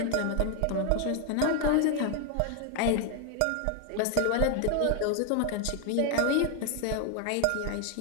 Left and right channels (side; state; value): both; different; correlation 0.00